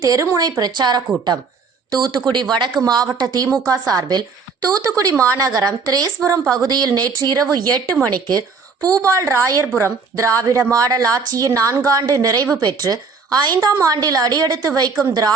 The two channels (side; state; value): left; quieter; 5.0 dB